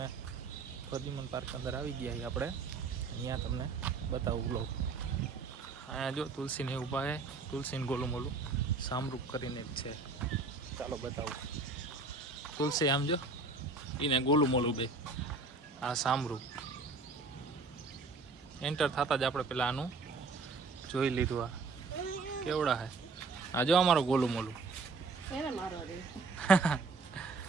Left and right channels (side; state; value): left; quieter; 4.0 dB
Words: પ્રદ્યુમન પાર્ક અંદર આવી ગયા આપણે, અહીંયા તમને બતાવું વ્લોગ. અહીંયા જો તુલસીને ઊભા છે, તુલસીને ગોલું મોલું સામરૂપ કરીને જ છે. ચાલો બતાવું. તુલસી આમ જો, એને ગોલું મોલું બે, આ સામરૂપ. એન્ટર થતા જ આપણે પેલા આનું જોઈ લીધું. આ કેવડા હે, આ જો અમારો ગોલું મોલું.